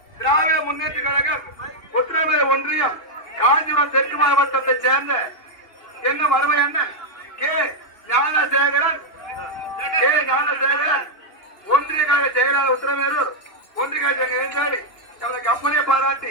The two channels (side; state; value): right; late; 2.7 ms